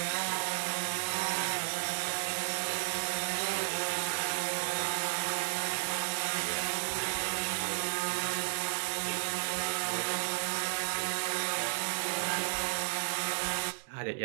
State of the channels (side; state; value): left; silent; digital silence